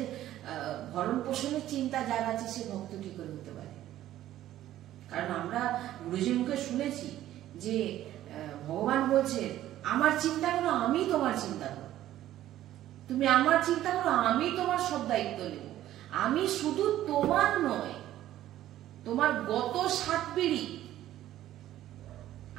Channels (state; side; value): quieter; left; 13.3 dB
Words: ভরণ পোষণের চিন্তা যার আছে, সে ভক্ত কি করে হতে পারে? কারণ আমরা গুরুজির মুখে শুনেছি যে ভগবান বলছে, আমার চিন্তা করো, আমি তোমার চিন্তা করো, তুমি আমার চিন্তা করো, আমি তোমার সব দায়িত্ব নেব। আমি শুধু তোমার নয়, তোমার গত 7 পিঢ়ি